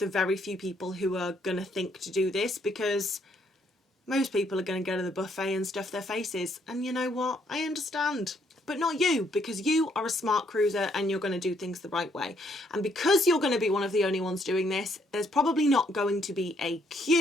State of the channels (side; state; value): both; normal; correlation 0.70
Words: very few people who are going to think to do this, because most people are going to go to the buffet and stuff their faces. And you know what? I understand. But not you, because you are a smart cruiser and you're going to do things the right way. And because you're going to be one of the only ones doing this, there's probably not going to be a